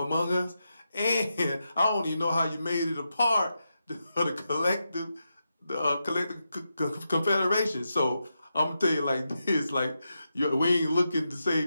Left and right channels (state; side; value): inverted; both; correlation -0.87